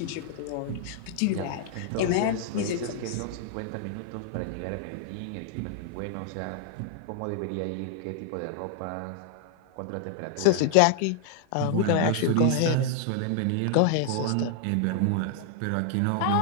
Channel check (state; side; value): different; both; correlation 0.00